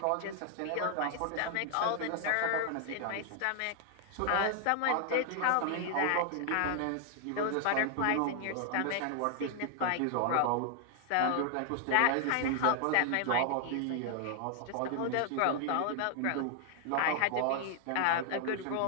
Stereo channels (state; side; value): different; both; correlation 0.00